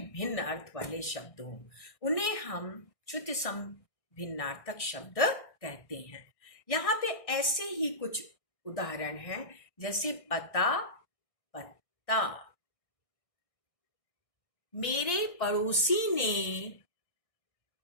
अर्थ वाले शब्द हो, उन्हें हम श्रुति सम भिन्नार्थक शब्द कहते हैं। यहाँ पे ऐसे ही कुछ उदाहरण हैं, जैसे पता, पत्ता। मेरे पड़ोसी ने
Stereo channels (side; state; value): right; late; 1.6 ms